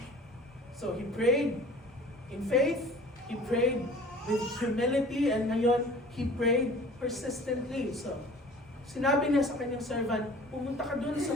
So he prayed in faith, he prayed with humility, and ngayon, he prayed persistently. So, sinabi niya sa kanyang servant, pumunta ka dun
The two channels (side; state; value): both; normal; correlation 0.46